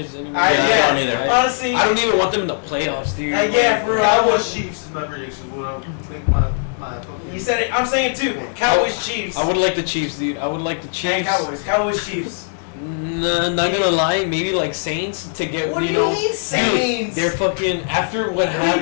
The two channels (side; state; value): right; silent; digital silence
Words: anymore. I don't either. Honestly, I don't even want them in the playoffs, dude. yeah, for real. Cowboys Chiefs is my prediction. What I'll make my fucking. You said it. I'm saying it too. Cowboys, Chiefs. I would like the Chiefs, dude. I would like the And Chiefs. Cowboys, Chiefs. Nah, not gonna lie, maybe like Saints to get What do you know. mean Saints? Dude, they're fucking after what